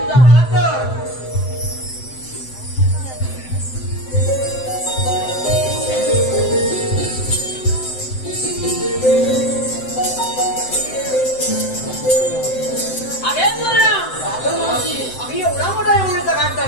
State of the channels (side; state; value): right; late; 7.8 ms